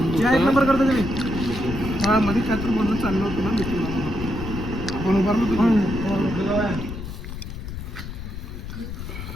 या एक नंबर करता तुम्ही हा मध्ये काय तर बोलणं चाललं होतं ना मिथून आपण उभारलो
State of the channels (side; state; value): left; noise; rumble, 8 dB below the sound